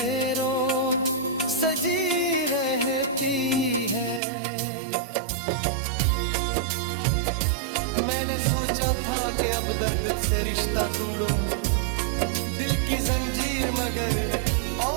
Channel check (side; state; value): left; drops out; at 4.2 s